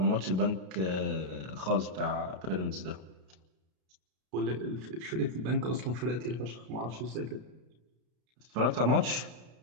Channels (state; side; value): late; left; 32 ms